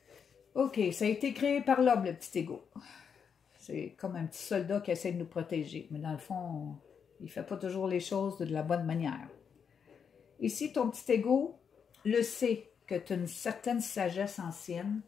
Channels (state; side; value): quieter; right; 6.9 dB